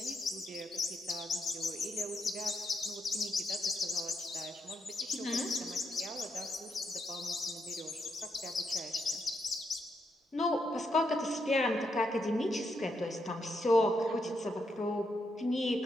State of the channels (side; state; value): both; normal; correlation 0.80